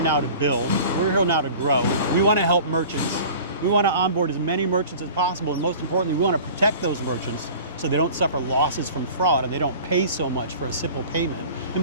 to build. We're here now to grow. We want to help merchants. We want to onboard as many merchants as possible. And most importantly, we want to protect those merchants so they don't suffer losses from fraud and they don't pay so much for a simple payment. And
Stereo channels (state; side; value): inverted; both; correlation -0.42